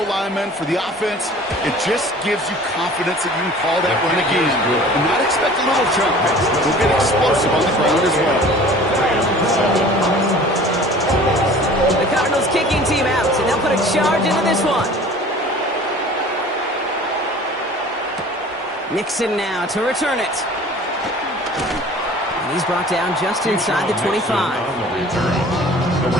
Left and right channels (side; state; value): both; normal; correlation 0.46